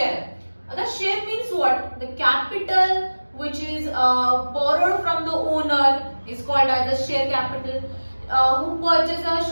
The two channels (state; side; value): inverted; both; correlation -1.00